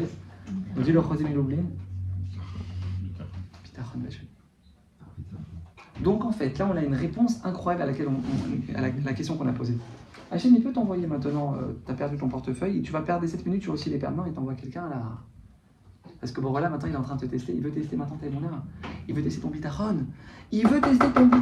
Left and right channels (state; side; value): identical; both; correlation 1.00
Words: On dit le Chosim et l'oubli. Donc en fait, là on a une réponse incroyable à laquelle à la question qu'on a posée. Hachem, il peut t'envoyer maintenant, tu as perdu ton portefeuille, tu vas perdre les 7 minutes, tu vas aussi les perdre. Non, il t'envoie quelqu'un là. Parce que bon voilà, maintenant il est en train de te tester, il veut tester maintenant tes bonheurs. Il veut tester ton bitachon. Il veut tester ton